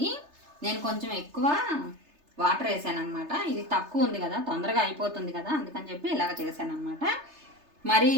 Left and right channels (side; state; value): left; late; 3.3 ms